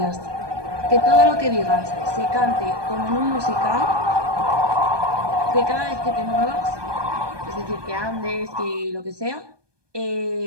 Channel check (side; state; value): left; late; 1.2 ms